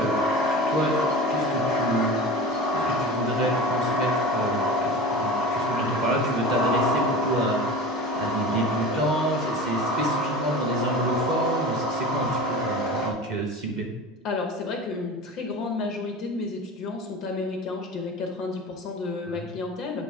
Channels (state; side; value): normal; both; correlation 0.34